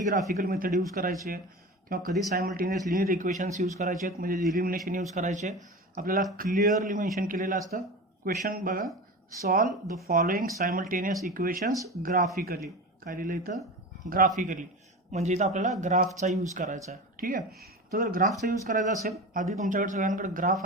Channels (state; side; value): normal; both; correlation 0.29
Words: ग्राफिकल मेथड यूज करायचे किंवा कधी सायमल्टेनियस लिनियर इक्वेशन्स यूज करायचे आहेत, म्हणजे इलिमिनेशन यूज करायचे. आपल्याला क्लिअरली मेन्शन केलेलं असतं. क्वेश्चन बघा, solve the following simultaneous equations graphically. काय लिहिलं इथं? ग्राफिकली. म्हणजे इथं आपल्याला ग्राफचा यूज करायचा आहे. ठीक आहे. तर जर ग्राफचा यूज करायचा असेल, आधी तुमच्याकडे सगळ्यांकडे ग्राफ